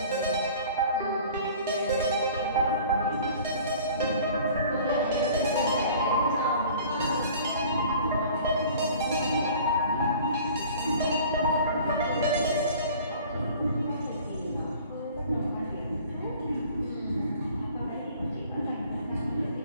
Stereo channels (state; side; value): inverted; both; correlation -0.48